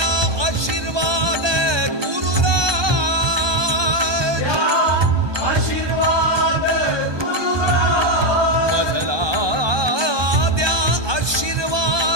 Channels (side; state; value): left; late; 1.2 ms